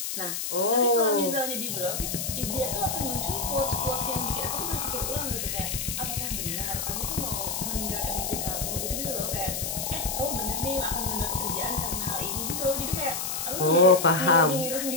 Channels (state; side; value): noise; left; hiss, 3 dB below the sound